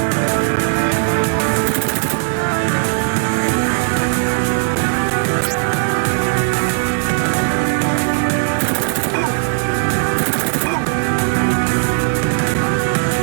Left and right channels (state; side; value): silent; left; digital silence